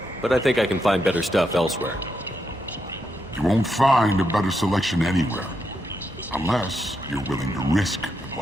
but I think I can find better stuff elsewhere. You won't find a better selection anywhere. Unless you're willing to risk the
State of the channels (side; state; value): both; normal; correlation 0.82